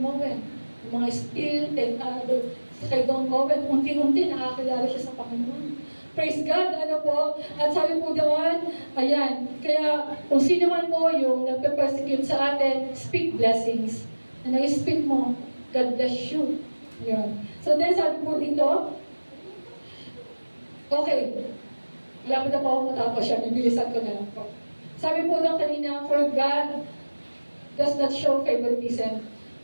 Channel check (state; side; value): inverted; both; correlation -1.00